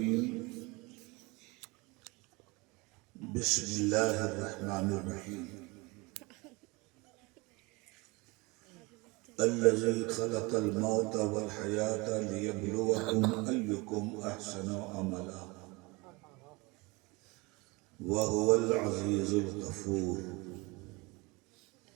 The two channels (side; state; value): left; quieter; 25.4 dB